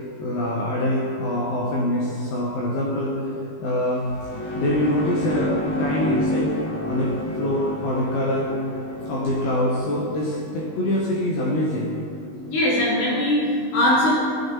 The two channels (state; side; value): late; right; 20 ms